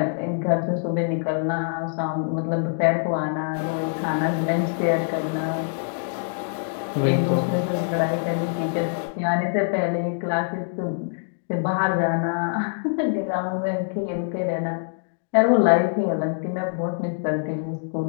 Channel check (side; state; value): right; silent; digital silence